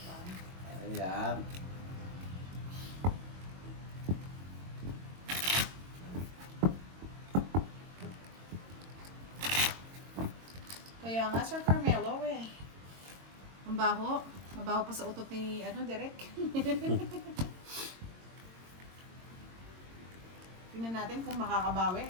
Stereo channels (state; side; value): late; left; 22 ms